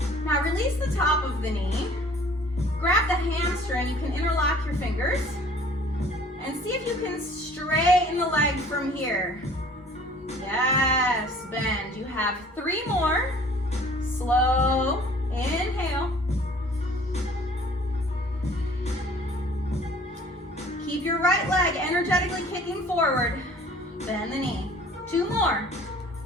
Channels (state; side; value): normal; both; correlation 0.51